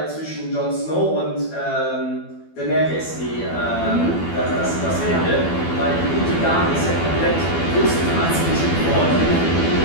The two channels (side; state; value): right; late; 12 ms